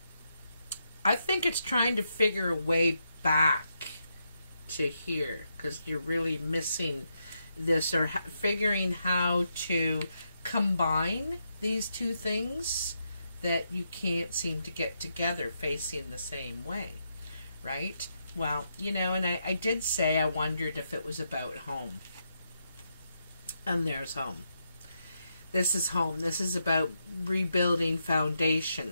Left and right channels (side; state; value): both; inverted; correlation -0.82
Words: I think it's trying to figure a way back to here, because you're really missing this, or figuring how to combine these two things that you can't seem to get together facing the same way, right? Well, and I did say I wondered if it was about home. And there's home. This is home. This is about rebuilding